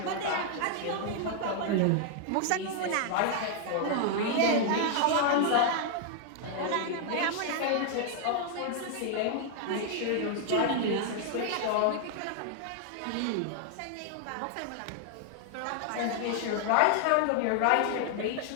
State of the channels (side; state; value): both; different; correlation 0.00